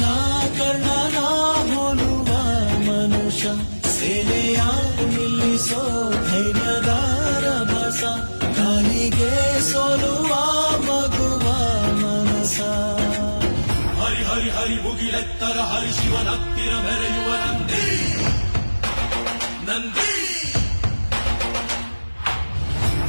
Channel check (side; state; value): both; inverted; correlation -1.00